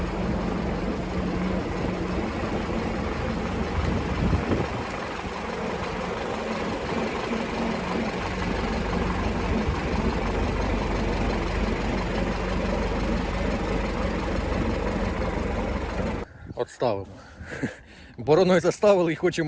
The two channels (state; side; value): identical; both; correlation 1.00